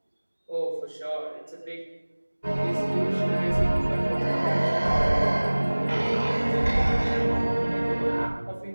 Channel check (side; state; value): both; inverted; correlation -1.00